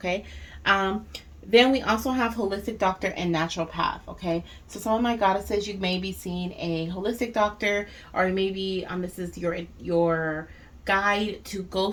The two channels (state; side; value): identical; both; correlation 1.00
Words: Then we also have holistic doctor and naturopath, okay. So some of my goddesses, you may be seeing a holistic doctor, or maybe this is your guide to go